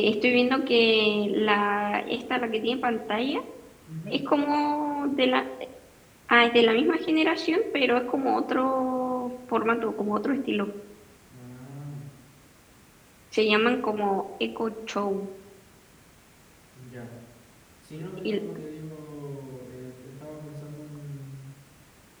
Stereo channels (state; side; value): identical; both; correlation 1.00